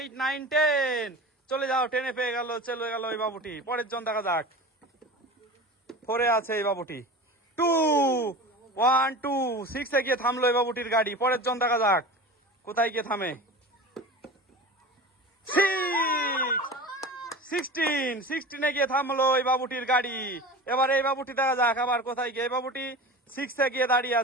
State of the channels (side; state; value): both; normal; correlation 0.33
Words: 9 10। চলে যাও, 10-এ পেয়ে গেল, চলে গেল এই বাবুটি। পরের জন দেখা যাক। 4-এ আছে এই বাবুটি। 2 1 2 6-এ গিয়ে থামলো এই বাবুটির গাড়ি। পরের জন দেখা যাক কোথায় গিয়ে থামে। 16-এ গিয়ে থামলো এই বাবুটির গাড়ি। এবার এই বাবুটি দেখা যাক আবার কোথায় গিয়ে। এই বাবুটি 6-এ গিয়ে দাঁড়িয়ে